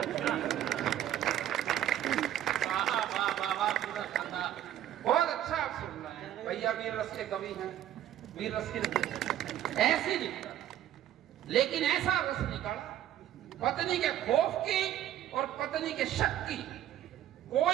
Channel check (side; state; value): left; quieter; 11.7 dB